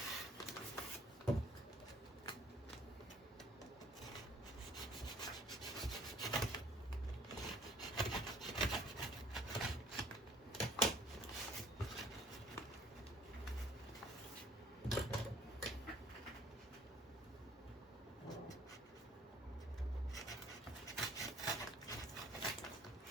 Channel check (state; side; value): normal; both; correlation 0.56